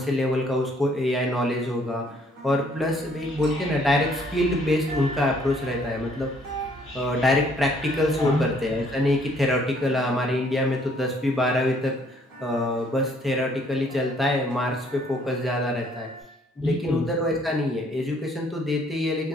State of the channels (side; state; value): both; normal; correlation 0.63